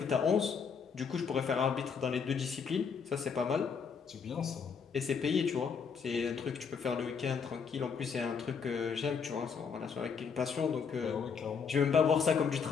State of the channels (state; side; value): quieter; right; 6.2 dB